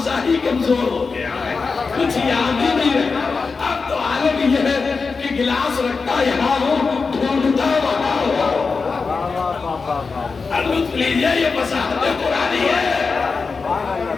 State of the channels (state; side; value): quieter; right; 4.6 dB